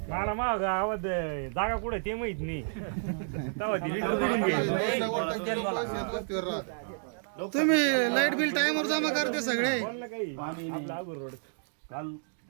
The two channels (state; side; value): silent; left; digital silence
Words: मला मग गावात जागा कुठे ते माहित नाही. तेव्हा ती लिटू करून गेली. तुम्ही लाईट बिल टाइमवर जमा करते सगळे. पाणी नाही. काल